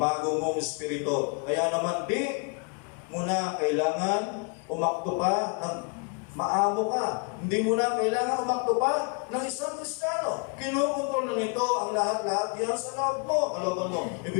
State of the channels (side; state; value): right; quieter; 36.6 dB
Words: mong Espiritu. Kaya naman di mo na kailangan umakto pa ng Maamo ka. Hindi mo na kailangan umakto pa ng isang Kristiyano. Kinukontrol na nito ang lahat-lahat yan sa loob mo, kalooban mo.